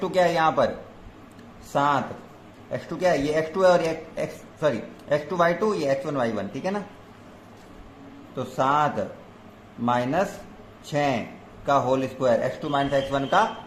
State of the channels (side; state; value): both; identical; correlation 1.00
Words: क्या है यहाँ पर 7, x2 क्या है ये x2 है और ये x2 y2 ये x1 y1, ठीक है ना। तो 7 माइनस 6 का whole square, x2 minus x1 का